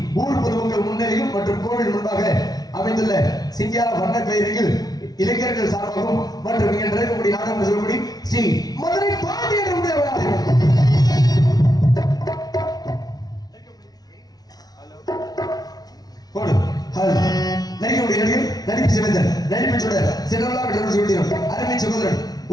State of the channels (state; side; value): late; right; 0.19 ms